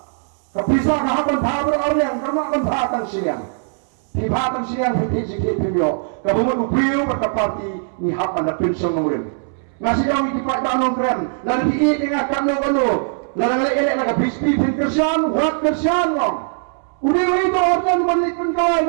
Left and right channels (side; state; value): left; silent; 66 dB below the other